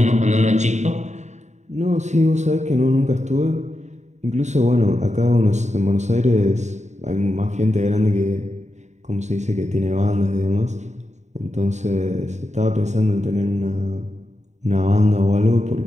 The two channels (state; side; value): late; left; 0.34 ms